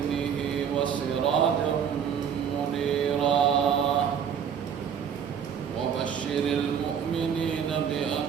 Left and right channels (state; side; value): quieter; left; 7.9 dB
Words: وسراجا منيرا وبشر المؤمنين